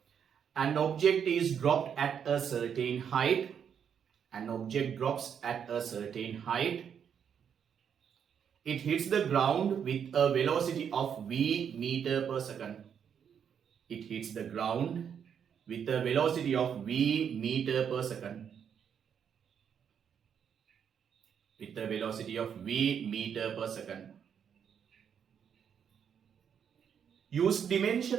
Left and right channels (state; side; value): quieter; left; 7.9 dB